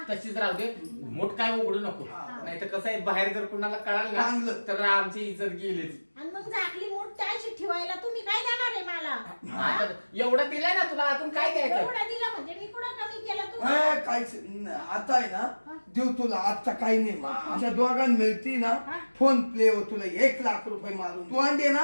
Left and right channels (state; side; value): inverted; both; correlation -1.00